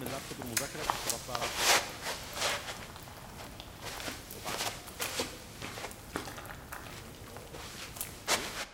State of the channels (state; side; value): identical; both; correlation 1.00